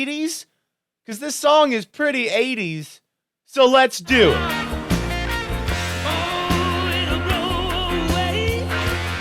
Because this song is pretty 80s, so let's do it.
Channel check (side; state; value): both; identical; correlation 1.00